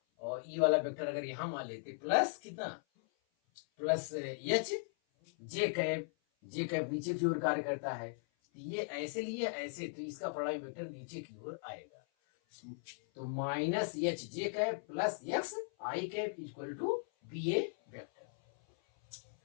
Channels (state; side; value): silent; right; 52 dB below the other